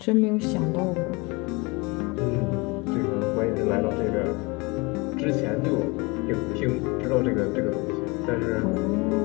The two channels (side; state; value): right; quieter; 26.8 dB